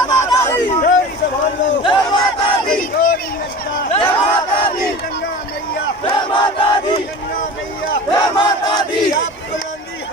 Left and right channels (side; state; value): both; normal; correlation 0.36